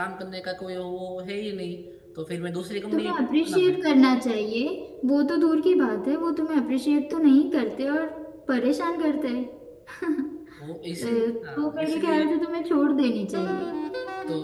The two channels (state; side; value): identical; both; correlation 1.00